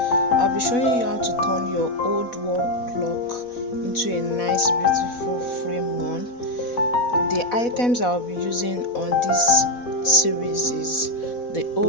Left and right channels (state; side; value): late; right; 4.1 ms